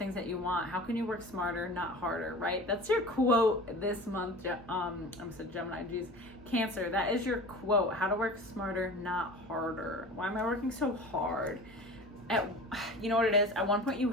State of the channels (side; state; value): both; normal; correlation 0.37